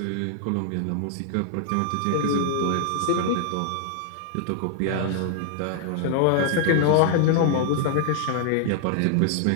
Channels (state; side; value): different; both; correlation 0.00